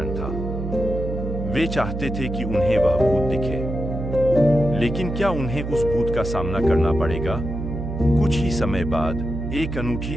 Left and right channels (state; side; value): noise; right; hum, 5 dB below the sound